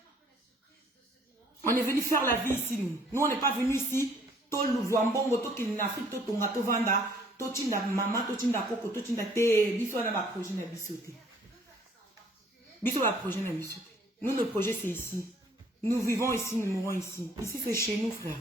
On est venu faire la vie ici, nous. Nous, on n'est pas venu ici. Tout le voambongo, tout le Afrique, tout le Tonga, tout Vanda, tout le maman, tout le Coco, tout le Té. Biso, on a un projet de bisoté. Biso, un projet de bisoté. Nous, notre projet, c'est ici. Nous vivons ici, nous mourons ici. Ici, c'est chez nous, frère.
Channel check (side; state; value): both; normal; correlation 0.60